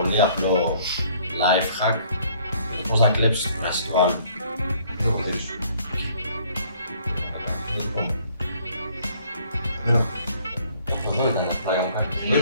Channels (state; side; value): inverted; both; correlation -0.60